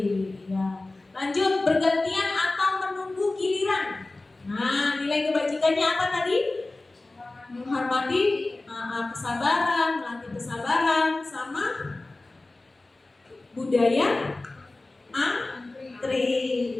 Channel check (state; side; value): quieter; right; 3.0 dB